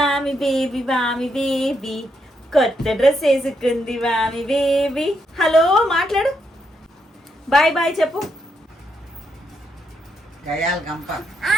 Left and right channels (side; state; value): both; normal; correlation 0.79